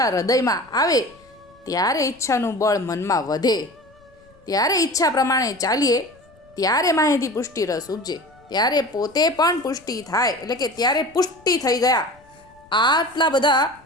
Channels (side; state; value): left; noise; rumble, 29 dB below the sound